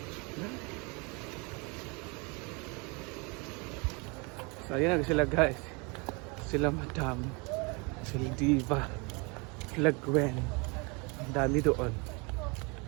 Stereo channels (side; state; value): left; quieter; 30.1 dB